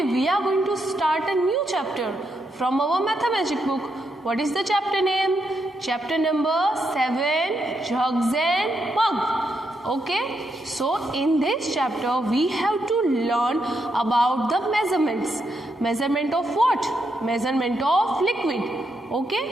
we are going to start a new chapter from our Mathemagic book. What is the chapter name? Chapter number 7, Jugs and Mug. Okay, so in this chapter we have to learn about the measurements. Measurement of what? Measurement of liquid.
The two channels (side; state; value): both; normal; correlation 0.80